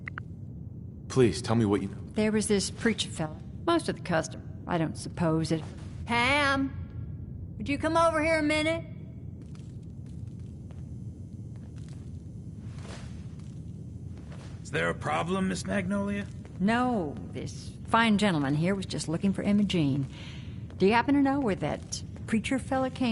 Please, tell me what you know. There was this preacher fella. Most of the custom. I don't suppose it... Pam, would you come over here a minute? Is there a problem, Miss Magnolia? No, this fine gentleman here was just looking for Imogene. Do you happen to know where that preacher fella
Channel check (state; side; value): identical; both; correlation 1.00